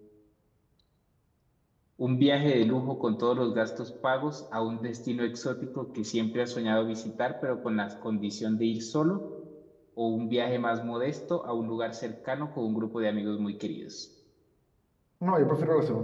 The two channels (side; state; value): both; identical; correlation 1.00